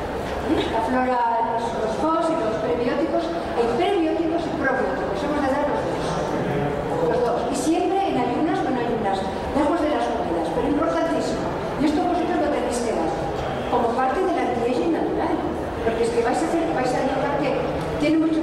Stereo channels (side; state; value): both; identical; correlation 1.00